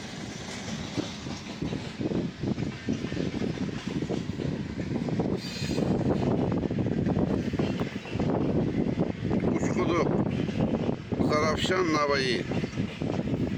Uçkudu. Zarafşan Navayı.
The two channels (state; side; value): identical; both; correlation 1.00